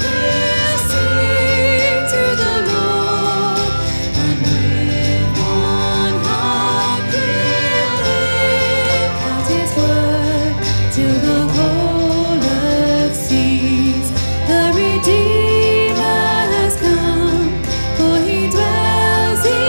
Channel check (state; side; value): inverted; both; correlation -1.00